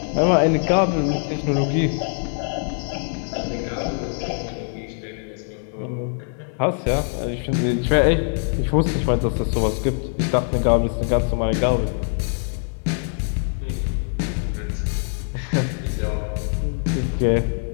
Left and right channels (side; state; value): right; silent; 64 dB below the other